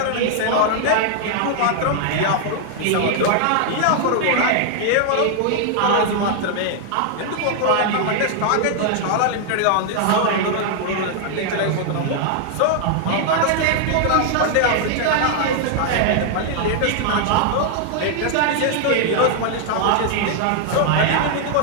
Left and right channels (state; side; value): different; both; correlation 0.00